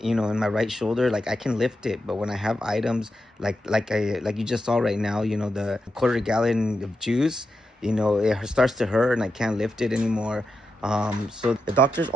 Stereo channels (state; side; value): normal; both; correlation 0.86